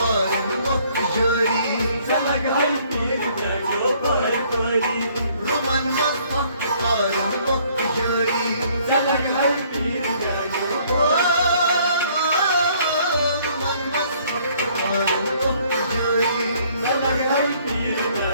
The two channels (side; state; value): both; inverted; correlation -0.62